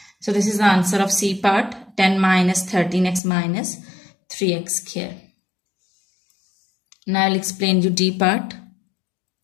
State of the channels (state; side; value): drops out; right; at 3.2 s